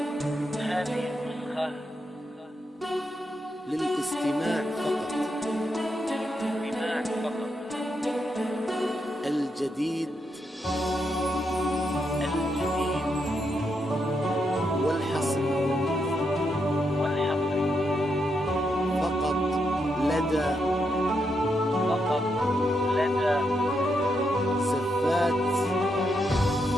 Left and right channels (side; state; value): both; normal; correlation 0.81